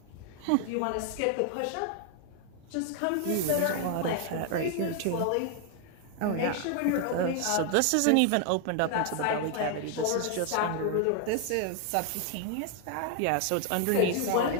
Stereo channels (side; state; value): both; different; correlation 0.00